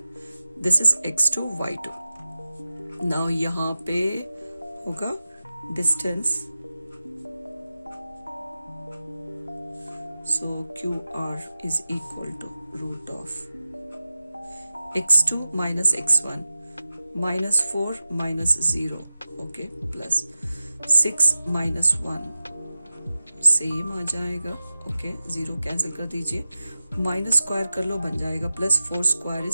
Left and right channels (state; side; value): inverted; both; correlation -0.94